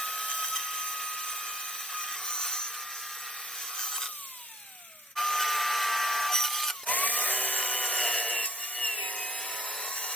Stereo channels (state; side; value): normal; both; correlation 0.57